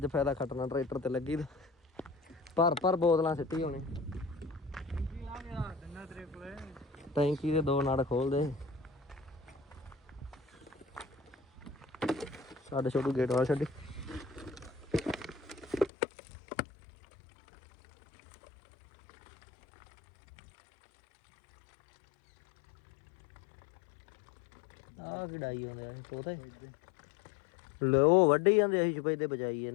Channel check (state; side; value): drops out; right; at 15.9 s